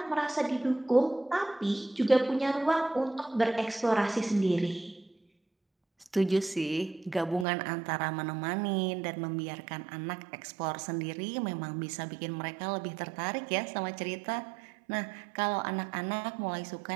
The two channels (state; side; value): drops out; left; at 7.5 s